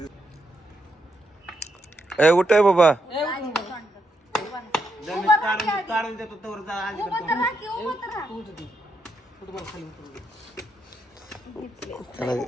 ए उठ आहे बाबा. काढून देतो तोवर जा.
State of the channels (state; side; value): normal; both; correlation 0.80